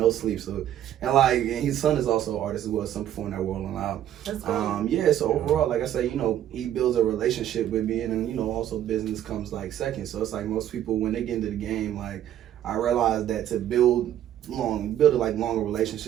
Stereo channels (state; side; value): quieter; left; 11.5 dB